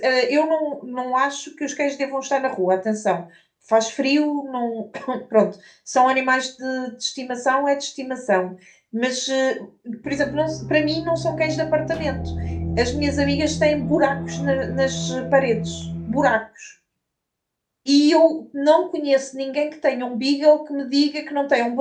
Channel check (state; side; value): identical; both; correlation 1.00